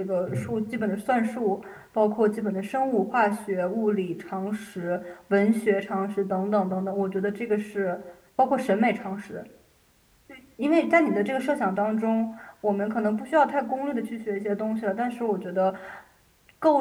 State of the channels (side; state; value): both; identical; correlation 1.00